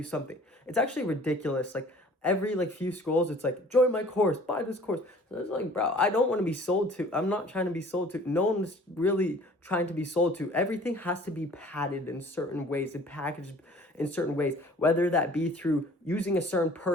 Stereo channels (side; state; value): both; normal; correlation 0.50